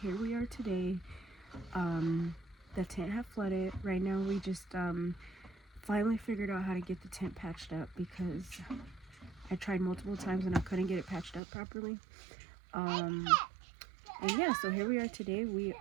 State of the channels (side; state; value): left; drops out; at 11.4 s